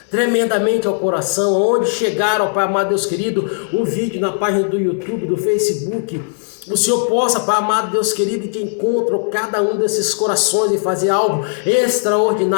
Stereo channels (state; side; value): silent; right; digital silence